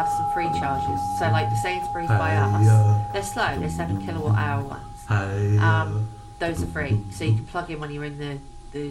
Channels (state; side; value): identical; both; correlation 1.00